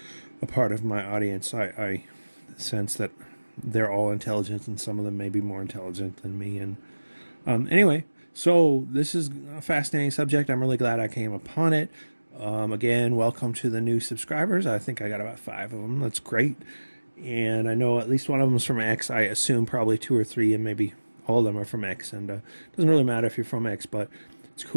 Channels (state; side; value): inverted; both; correlation -1.00